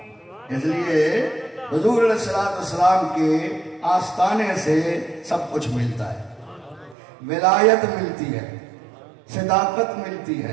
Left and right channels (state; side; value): drops out; left; at 7.0 s